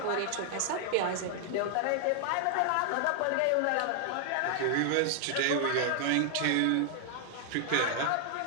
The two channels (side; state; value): both; different; correlation 0.00